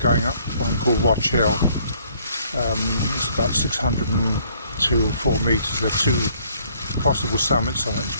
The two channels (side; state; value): both; inverted; correlation -0.62